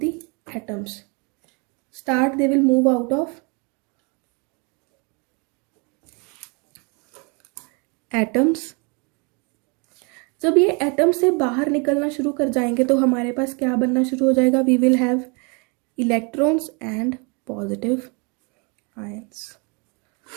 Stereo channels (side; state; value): left; quieter; 32.6 dB